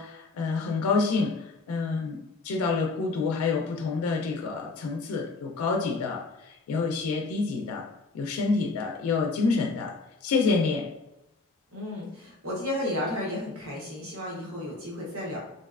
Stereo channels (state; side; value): quieter; right; 3.6 dB